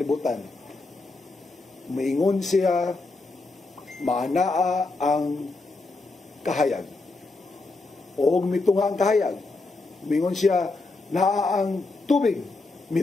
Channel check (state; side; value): quieter; right; 3.4 dB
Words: Maingon siya, maanaa ang kahayag. O mitunga ang kahayag. Maingon siya, naa ang tubig.